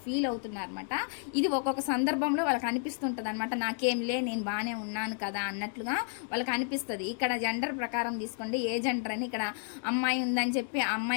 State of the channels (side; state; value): right; silent; 56 dB below the other